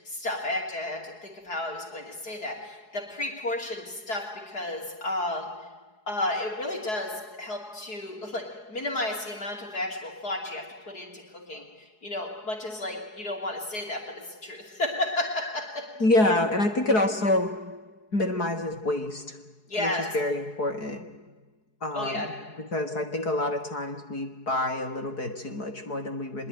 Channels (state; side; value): late; right; 4.7 ms